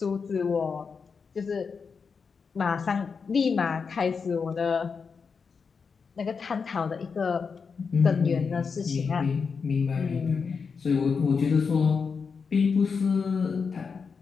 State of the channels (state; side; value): quieter; right; 5.5 dB